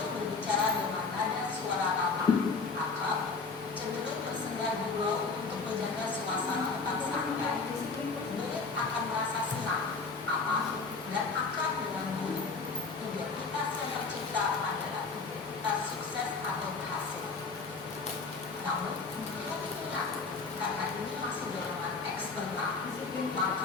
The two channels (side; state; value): right; quieter; 4.4 dB